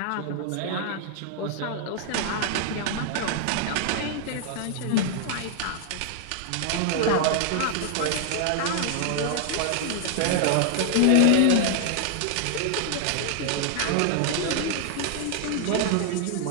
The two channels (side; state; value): both; different; correlation 0.00